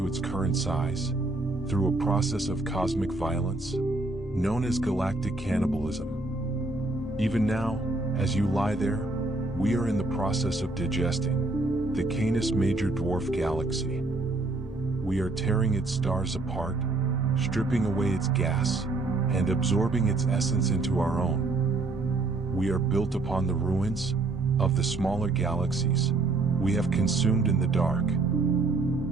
its current size through a process of cosmic violence known as galactic cannibalism. Even now, as you lie there, we are in the process of digesting the Canis Major Dwarf Galaxy. We are tearing its stars apart, stripping away its gas, and absorbing its essence into our own. We are built upon the ruins of the smaller galaxies we have consumed in the dark.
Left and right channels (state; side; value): quieter; left; 3.3 dB